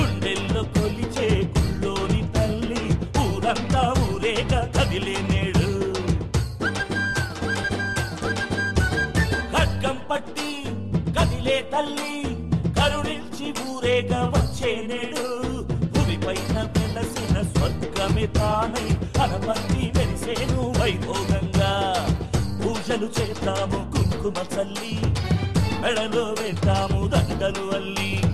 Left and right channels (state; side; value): identical; both; correlation 1.00